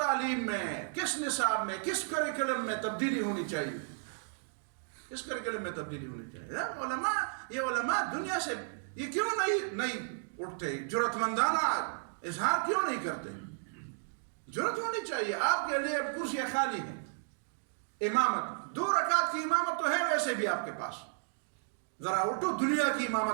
میں، کس نصاب میں، کس کریکلم میں تبدیلی ہونی چاہیے؟ کس کریکلم میں تبدیلی ہونی چاہیے؟ یہ علماء دنیا سے یہ کیوں نہیں اٹھتے؟ جرأت مندانہ اظہار کیوں نہیں کرتے؟ جرأت ہونی چاہیے. آپ کے لیے کرسیاں خالی ہیں، امامت 2 رکعت کی امامت تو ہے ویسے بھی آپ کے پاس، ذرا اٹھو دنیا کی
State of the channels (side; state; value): left; silent; digital silence